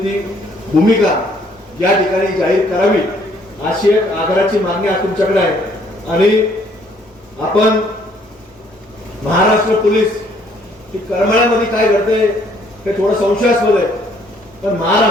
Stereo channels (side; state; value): both; normal; correlation 0.64